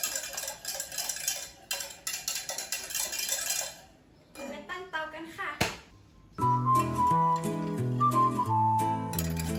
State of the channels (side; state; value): both; identical; correlation 1.00